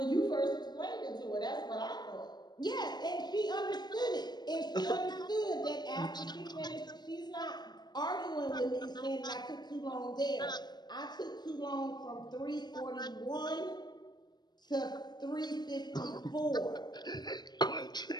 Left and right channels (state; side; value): late; right; 0.20 ms